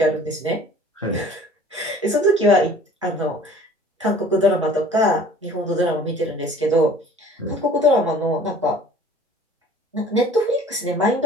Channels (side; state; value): both; normal; correlation 0.49